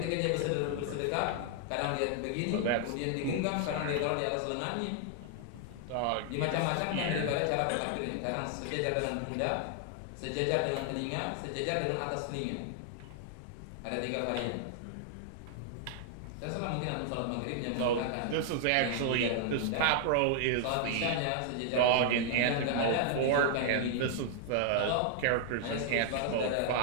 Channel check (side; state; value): both; different; correlation 0.00